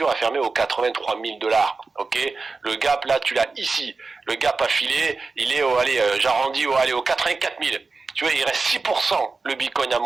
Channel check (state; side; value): quieter; left; 4.1 dB